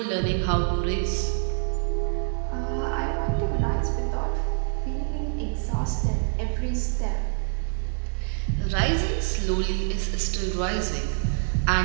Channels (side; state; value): left; silent; 55 dB below the other